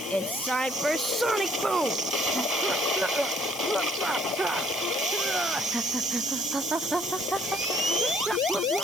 It's time for Sonic Boom!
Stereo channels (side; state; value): left; noise; hiss, 11 dB below the sound